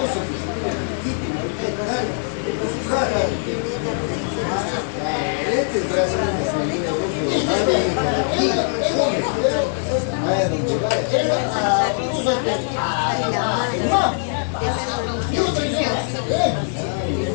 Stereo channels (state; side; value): silent; right; digital silence